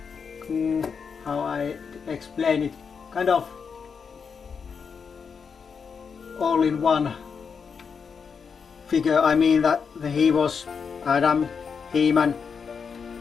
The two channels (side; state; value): right; quieter; 6.1 dB